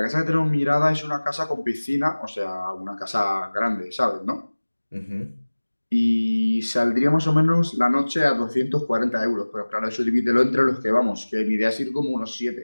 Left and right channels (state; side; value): inverted; both; correlation -1.00